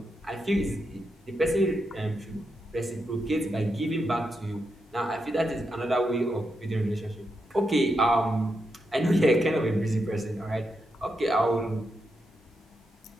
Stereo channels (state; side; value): normal; both; correlation 0.84